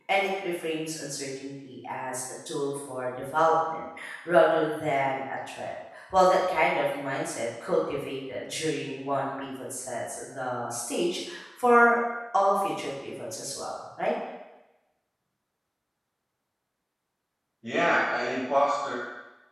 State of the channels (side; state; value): both; identical; correlation 1.00